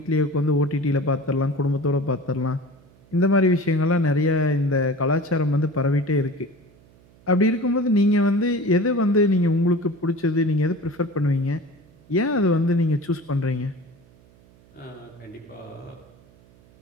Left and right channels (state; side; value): noise; right; hum, 28 dB below the sound